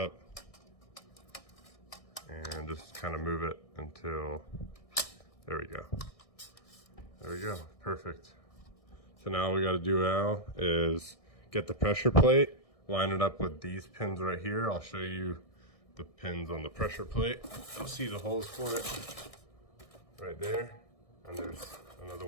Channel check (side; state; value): right; late; 1.6 ms